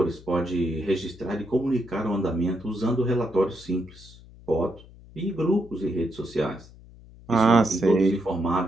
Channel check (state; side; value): noise; left; hum, 21 dB below the sound